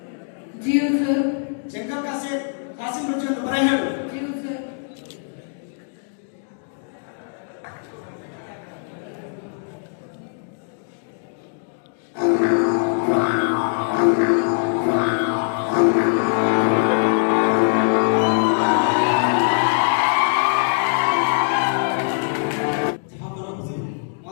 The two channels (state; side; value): silent; right; 60 dB below the other